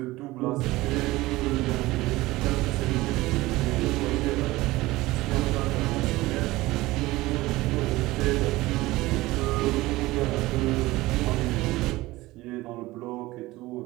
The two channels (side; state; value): left; quieter; 19.1 dB